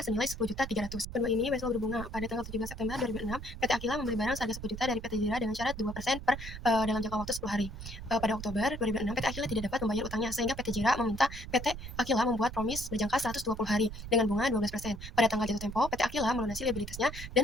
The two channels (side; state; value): right; noise; rumble, 10 dB below the sound